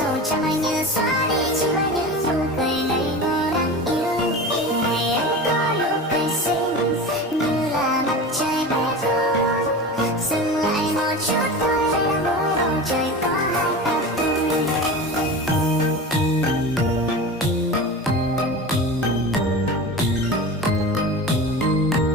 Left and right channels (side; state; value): both; normal; correlation 0.30